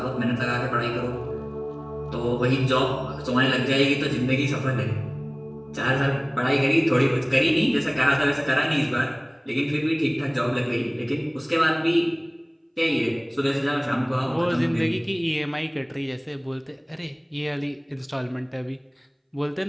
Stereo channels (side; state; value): both; identical; correlation 1.00